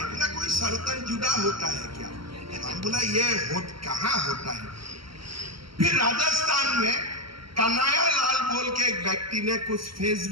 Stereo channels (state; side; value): late; left; 0.74 ms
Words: बोला कोई सरतन जुदा होता है क्या? हम बोला ये कहाँ होता है। फिर राजस्थान में कन्हैया लाल बोल के एक व्यक्ति ने कुछ